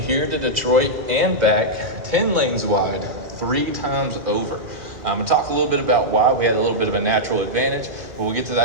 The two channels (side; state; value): left; late; 2.4 ms